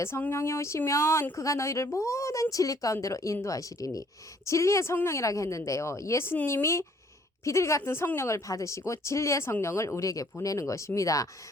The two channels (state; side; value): normal; both; correlation 0.61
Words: 성령이 오시면 그가 너희를 모든 진리 가운데로 인도하시리니 진리의 성령이라고 했는데요. 예수님이 비둘기 같은 성령을 받으시고 진리의 성령을 우리에게 보내는 것입니다.